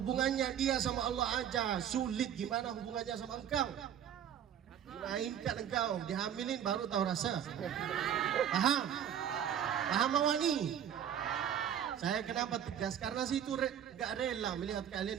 dia sama Allah aja sulit, gimana hubungannya sama engkau? Mainkan engkau, dihamilin baru tahu rasa. Paham? Paham awani? Saya kenapa tegas? Karena situ gak rela melihat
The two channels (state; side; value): quieter; left; 9.4 dB